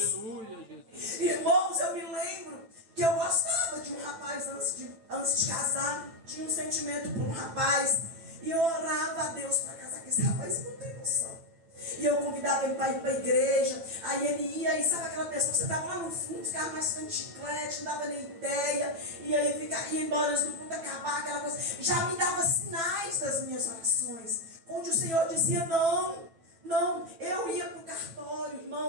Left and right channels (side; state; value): left; late; 9.0 ms